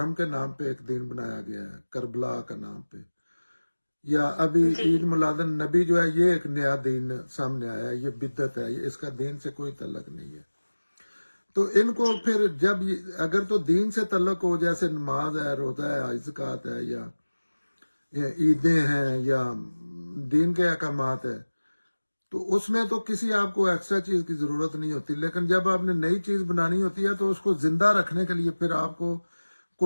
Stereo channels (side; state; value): both; inverted; correlation -1.00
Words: کے نام پہ ایک دین بنایا گیا ہے، کربلا کا نام پہ، یا ابھی جی عید میلاد النبی جو ہے، یہ ایک نیا دین سامنے آیا ہے، یہ بدعت ہے، اس کا دین سے کوئی تعلق نہیں ہے۔ تو ان کو پھر جب اگر تو دین سے تعلق ہو، جیسے نماز ہے، روزہ ہے، زکوٰۃ ہے، یا عیدیں ہیں، یا دین کے احکامات ہے، تو اس میں تو کسی آپ کو ایکسٹرا چیز کی ضرورت نہیں ہوتی۔ لیکن جب آپ نے نئی چیز بنانی ہوتی ہے تو اس کو زندہ رکھنے کے لیے پھر آپ کو